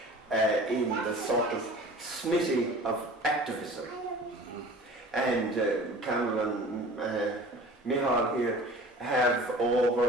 in the sort of smithy of activism. And Campbell and Micheál here have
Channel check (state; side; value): normal; both; correlation 0.43